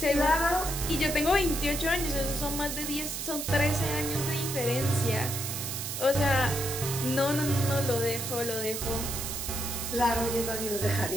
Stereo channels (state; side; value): noise; right; hiss, 4 dB below the sound